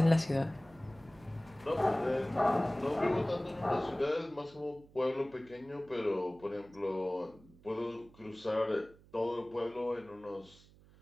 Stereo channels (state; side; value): noise; right; hum, 25 dB below the sound